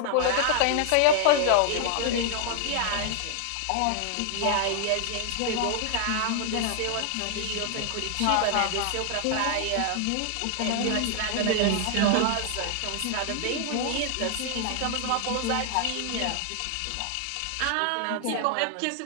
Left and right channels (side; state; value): both; different; correlation 0.00